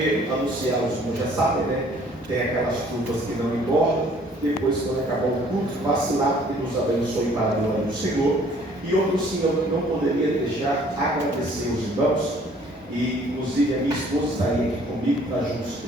anunciar, os irmãos já sabem, né? Tem aquelas curvas que não engordam. Depois, quando acabar o culto, passe lá e nos abençoe para a glória do Senhor. E outro sim, eu não poderia deixar agradecer os irmãos, e inclusive a minha esposa estaria aqui comigo para juntos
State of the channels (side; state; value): both; normal; correlation 0.58